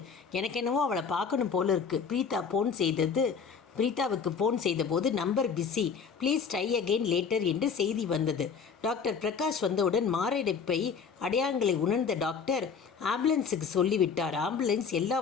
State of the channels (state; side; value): quieter; right; 6.0 dB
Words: எனக்கு என்னவோ அவளை பார்க்கணும் போல இருக்குது. பிரீதா ஃபோன் செய்தது பிரீதாவுக்கு ஃபோன் செய்தபோது number busy, please try again later என்று செய்தி வந்தது. டாக்டர் பிரகாஷ் வந்தவுடன் மாரடைப்பை அடையாளங்களை உணர்ந்த டாக்டர் ஆம்புலன்ஸுக்கு சொல்லிவிட்டார். ஆம்புலன்ஸ் எல்லா